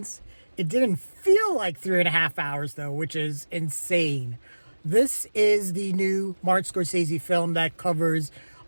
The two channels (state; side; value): inverted; both; correlation -1.00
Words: It didn't feel like 3.5 hours though, which is insane. This is the new Martin Scorsese film that covers